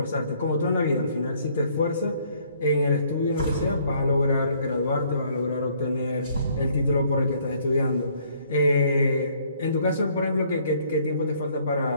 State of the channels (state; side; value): inverted; both; correlation -0.63